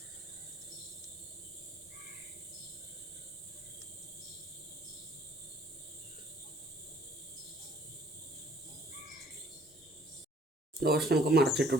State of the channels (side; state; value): both; normal; correlation 0.60